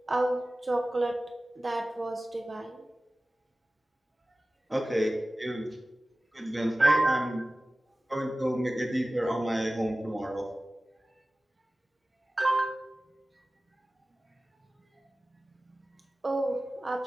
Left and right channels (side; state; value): both; normal; correlation 0.97